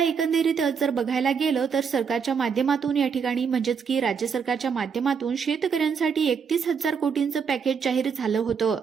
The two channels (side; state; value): left; quieter; 6.3 dB